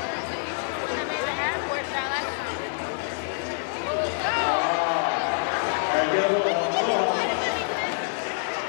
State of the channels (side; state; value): right; silent; 61 dB below the other